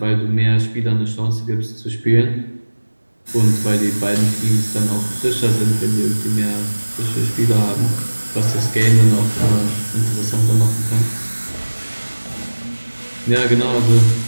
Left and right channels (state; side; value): inverted; both; correlation -1.00